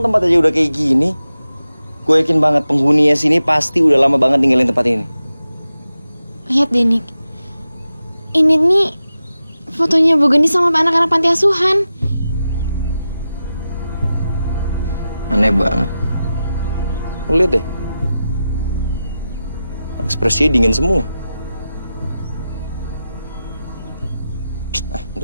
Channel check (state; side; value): inverted; both; correlation -0.91